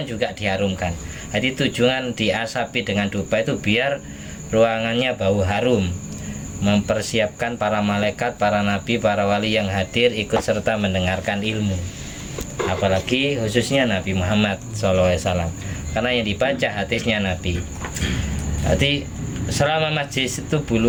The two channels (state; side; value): identical; both; correlation 1.00